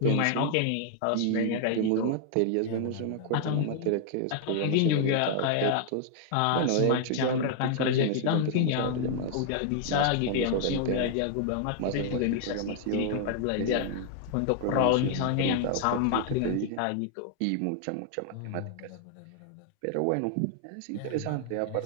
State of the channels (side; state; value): both; different; correlation 0.00